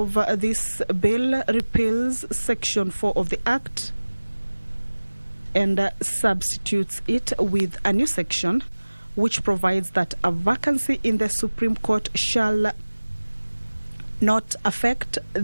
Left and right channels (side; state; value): both; inverted; correlation -1.00